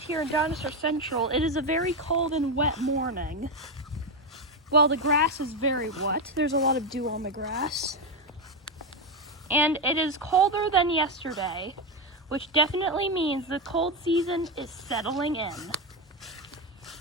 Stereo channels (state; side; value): normal; both; correlation 0.09